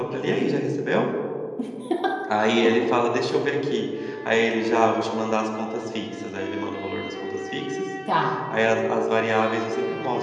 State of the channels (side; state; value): both; identical; correlation 1.00